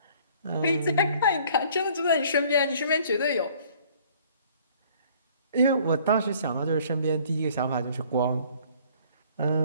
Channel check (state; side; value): inverted; both; correlation -0.56